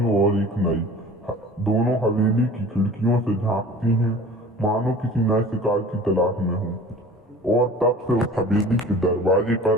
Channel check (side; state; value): both; normal; correlation 0.43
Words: और एक नई। दोनों हवेली की खिड़कियों से झांकती हैं, मानो किसी नए शिकार की तलाश में हो। और तब से उस हवेली के दरवाजे